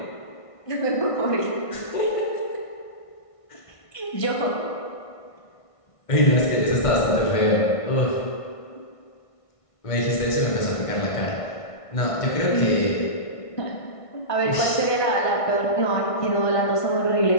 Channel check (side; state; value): right; late; 1.5 ms